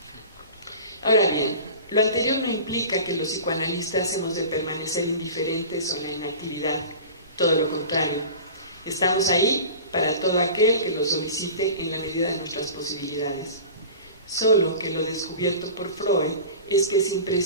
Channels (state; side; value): inverted; both; correlation -0.36